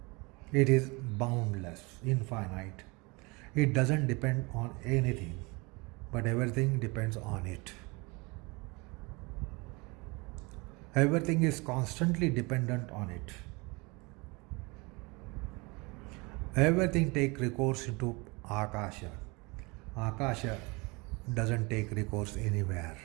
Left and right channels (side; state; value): left; quieter; 26.8 dB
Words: It is boundless, infinite. It doesn't depend on anything, but everything depends on it. Everything is constantly dependent on it. Everything takes recourse into Akasha. Akasha doesn't take recourse anywhere.